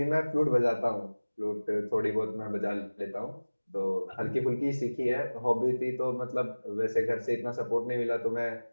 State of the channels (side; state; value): both; inverted; correlation -1.00